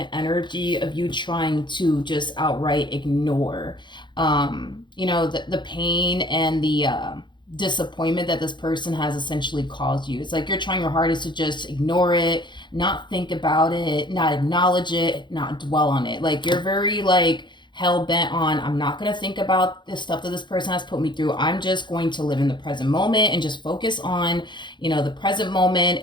energy of you trying to just outright ignore, you know, the pain and the disappointment that this person has essentially caused you. It's like you're trying your hardest to just ignore it, not think about it, not acknowledge it, not dwell on it. Like you're very like hell bent on, I'm not going to think about the stuff that this person has put me through. I'm just going to live in the present moment and just focus on, you know, the present moment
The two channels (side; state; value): right; late; 0.22 ms